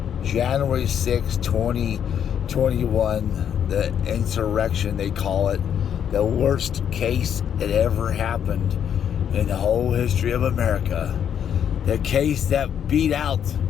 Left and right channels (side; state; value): right; quieter; 8.8 dB